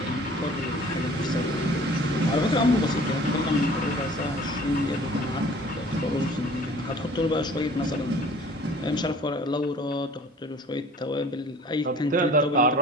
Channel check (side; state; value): both; normal; correlation 0.49